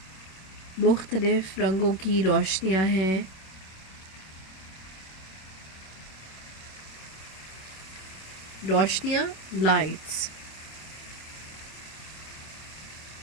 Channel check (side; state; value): right; late; 26 ms